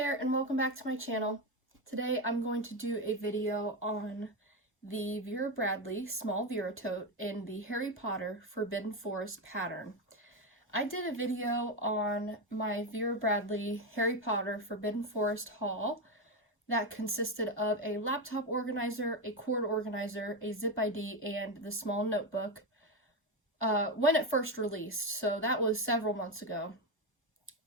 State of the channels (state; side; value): normal; both; correlation 0.11